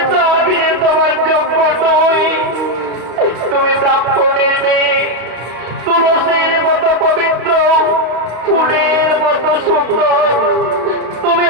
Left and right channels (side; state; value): left; late; 32 ms